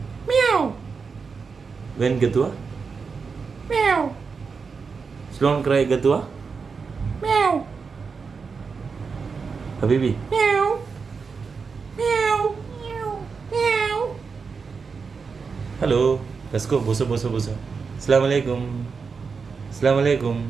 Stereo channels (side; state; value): left; quieter; 5.2 dB